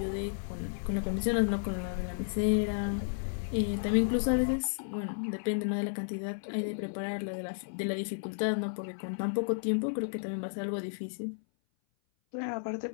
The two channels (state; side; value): silent; right; 56 dB below the other